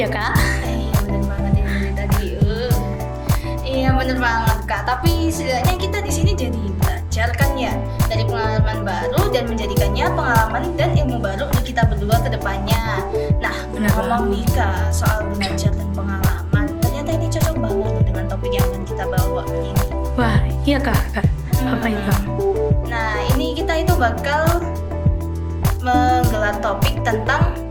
kak. Iya bener banget ini dari tadi. Iya bener banget kak. Tapi setidaknya kita di sini jadi belajar kan ya dari pengalaman baru dan menjadikannya pengalaman dan ilmu baru untuk kita berdua ke depannya. Nah, Bener ngomong nih kak soal belajar dan pengalaman, ternyata ini cocok banget loh dengan topik yang akan kita bawa kali ini. Wah iya kak. Apa itu? Nah, ini kita itu bakal menggelar topik tentang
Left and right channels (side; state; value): both; identical; correlation 1.00